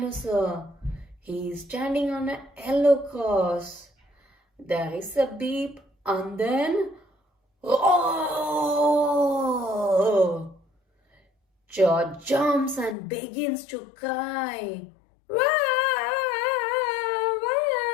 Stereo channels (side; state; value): right; drops out; at 13.0 s